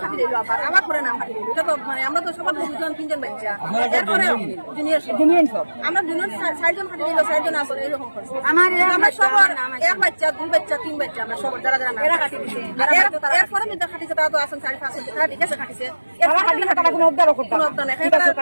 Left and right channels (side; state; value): both; inverted; correlation -1.00